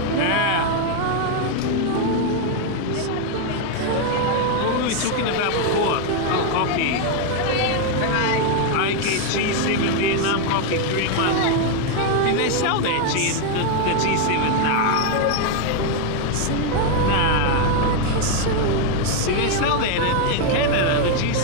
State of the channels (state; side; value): different; both; correlation 0.01